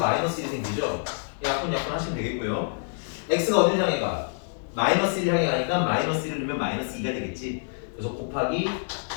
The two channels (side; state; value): right; silent; 60 dB below the other